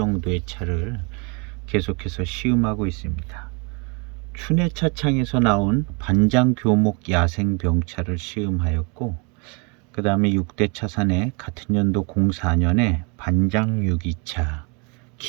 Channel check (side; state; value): left; quieter; 32.1 dB